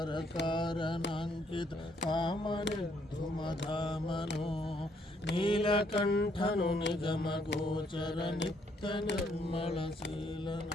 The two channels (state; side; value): normal; both; correlation 0.70